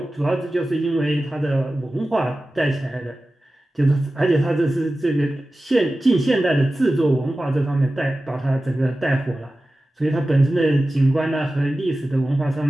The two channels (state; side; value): normal; both; correlation 0.95